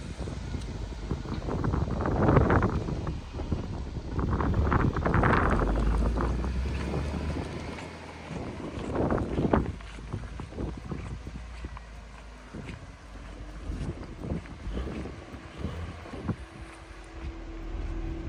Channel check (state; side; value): identical; both; correlation 1.00